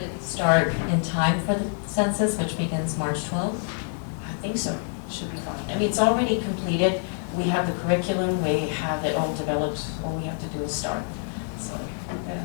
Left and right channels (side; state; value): right; silent; 56 dB below the other